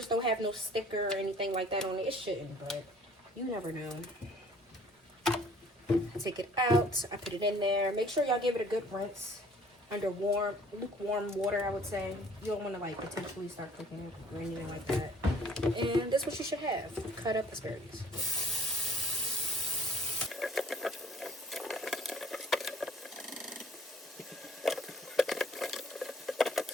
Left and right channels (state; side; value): normal; both; correlation 0.54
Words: don't have no sticker or anything like that on it. It shouldn't, but you never know. I take it out. I put it in there. Make sure y'all give it a good rinse under lukewarm water, I would say. You don't want to like potentially start cooking it or anything like that. And that's what you should have. Cut up asparagus.